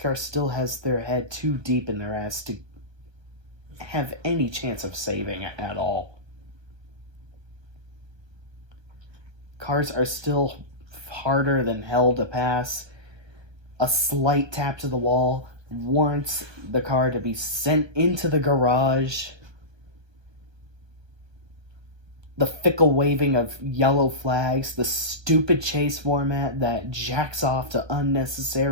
still has their head too deep in their ass to have any chance of saving it at all. Cars are still harder than hell to pass. A slight tap to the wall warrants the car to be sent into the garage. The fickle waving of yellow flags, the stupid chase format that jacks off to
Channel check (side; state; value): left; late; 1.3 ms